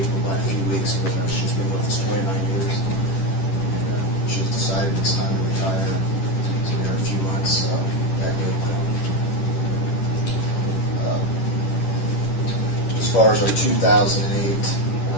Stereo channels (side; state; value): right; late; 11 ms